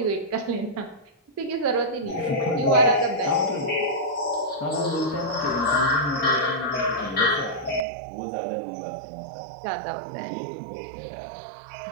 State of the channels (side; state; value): left; drops out; at 7.9 s